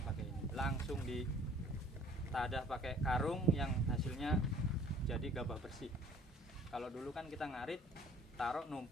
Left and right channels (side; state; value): both; normal; correlation 0.53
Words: pakai ini. Langsung ditadah pakai karung yang hasilnya jadi gabah bersih. Kalau dulu kan kita ngarit, taruh